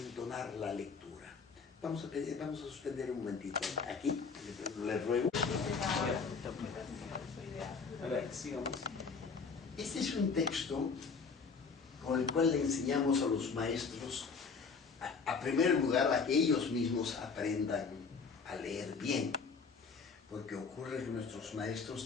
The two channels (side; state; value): right; quieter; 5.1 dB